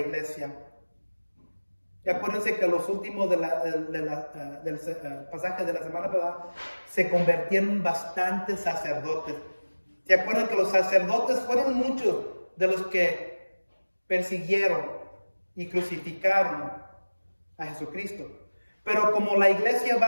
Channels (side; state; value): both; inverted; correlation -1.00